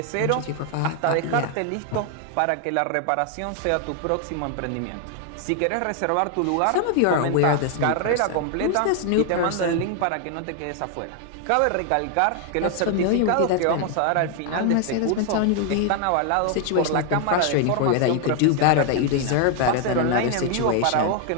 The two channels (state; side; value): different; both; correlation 0.00